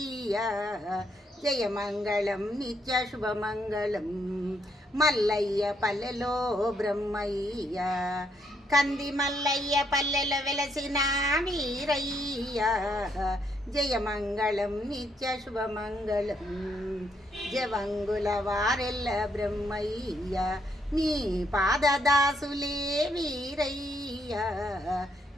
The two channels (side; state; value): both; normal; correlation 0.74